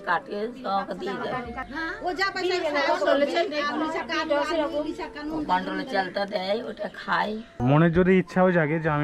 কাটে সব দিয়ে দেয়, ও যা পয়সা কন্ট্রোলে চালটা দেয়, ওটা খায়। মনের যদি ইচ্ছাও জাগে যে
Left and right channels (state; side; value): identical; both; correlation 1.00